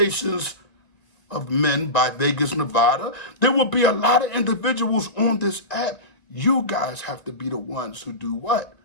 of Men by Vegas, Nevada. There will be a lot of individuals on this app. You guys have to be the ones who do what?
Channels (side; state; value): right; late; 1.9 ms